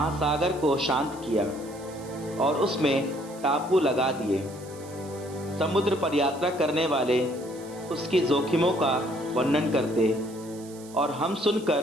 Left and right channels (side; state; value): right; noise; hiss, 21 dB below the sound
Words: को शांत किया और उसमें टापू लगा दिए। समुद्र पर यात्रा करने वाले उसकी जोखिमों का वर्णन करते और हम